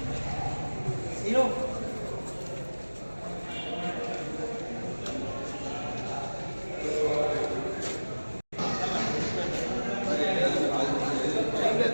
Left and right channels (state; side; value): inverted; both; correlation -1.00